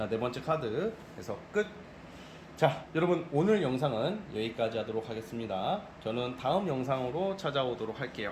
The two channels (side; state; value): both; identical; correlation 1.00